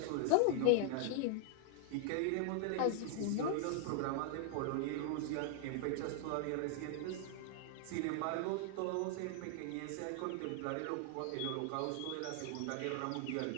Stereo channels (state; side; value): different; both; correlation -0.01